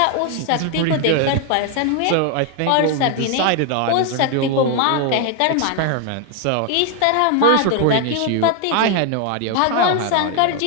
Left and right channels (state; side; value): different; both; correlation 0.01